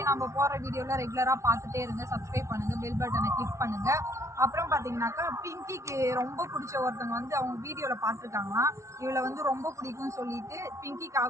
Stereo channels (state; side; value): late; left; 0.14 ms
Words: நம்ம போற வீடியோல ரெகுலரா பார்த்துட்டே இருங்க. சப்ஸ்கிரைப் பண்ணுங்க, பெல் பட்டனை கிளிக் பண்ணுங்க. அப்புறம் பாத்தீங்கன்னாக்கா பிங்கிக்கு ரொம்ப பிடிச்ச ஒருத்தவங்க வந்து அவங்க வீடியோல பார்த்துருக்காங்களாம். இவளை வந்து ரொம்ப பிடிக்கும்னு சொல்லிட்டு